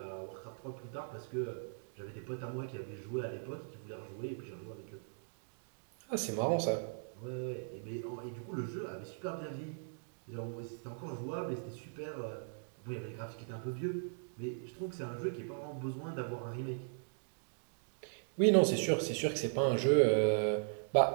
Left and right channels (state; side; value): silent; left; digital silence